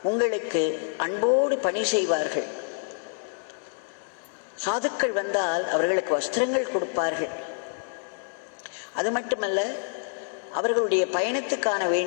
உங்களுக்கு அன்போடு பணி செய்வார்கள். சாதுக்கள் வந்தால் அவர்களுக்கு வஸ்திரங்கள் கொடுப்பார்கள். அது மட்டுமல்ல, அவர்களுடைய பயணத்துக்கான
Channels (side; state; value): right; silent; digital silence